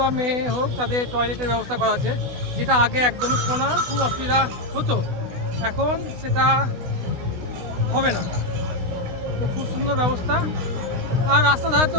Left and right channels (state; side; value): late; left; 16 ms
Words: মেয়ে হোক, তাদের টয়লেটের ব্যবস্থা করা আছে, যেটা আগে একদমই ছিল না, খুব অসুবিধা হতো। এখন সেটা হবে না, তো খুব সুন্দর ব্যবস্থা। আর রাস্তা ধারে